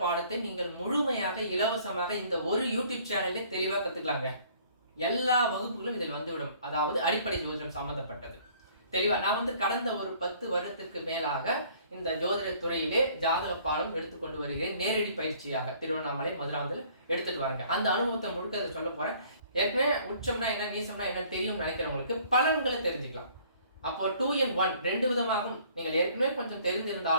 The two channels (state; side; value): inverted; both; correlation -0.57